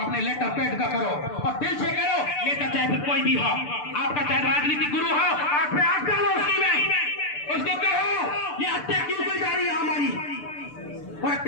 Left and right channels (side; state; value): right; late; 6.8 ms